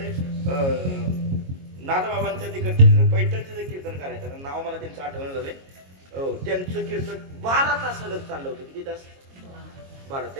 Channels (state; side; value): late; left; 22 ms